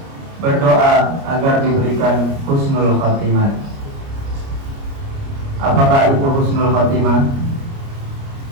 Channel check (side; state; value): left; late; 29 ms